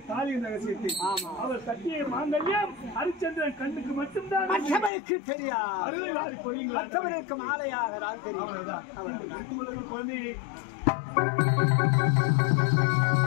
தாலியின் ரகசியத்தை. அவர் கட்டிய மாங்கல்யம் ஹரிச்சந்திரன் கண்ணுக்கு மட்டும்தான் மற்றவருக்கு தெரியாது. அருளை வாரி பொழியுங்கள். மற்றவருக்கு மாலையாக தான் தெரியும். குழந்தையை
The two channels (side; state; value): right; drops out; at 4.9 s